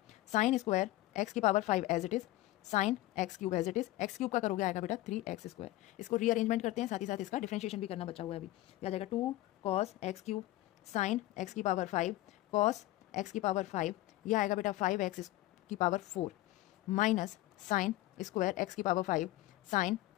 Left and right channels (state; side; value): quieter; right; 16.8 dB